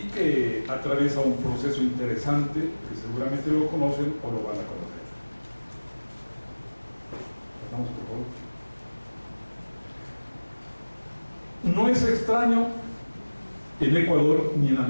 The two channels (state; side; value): inverted; both; correlation -1.00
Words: que atraviesa un proceso interesante que seguramente lo conocen o lo van a conocer. Pasamos, por favor. No es extraño en Ecuador ni en